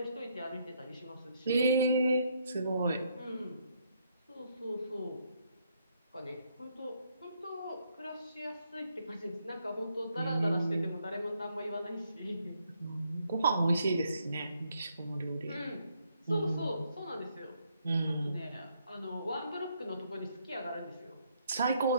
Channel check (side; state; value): both; inverted; correlation -0.73